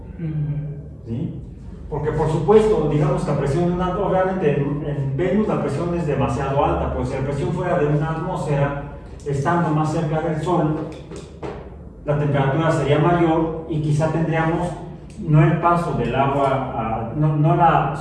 ¿Sí? Porque por supuesto, digamos que la presión de una atmósfera, obviamente en Venus la presión es demasiado alta, pues si la presión fuera de una atmósfera, estando más cerca del Sol, la temperatura sería mayor y quizá tendríamos no el paso del agua, no la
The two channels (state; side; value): identical; both; correlation 1.00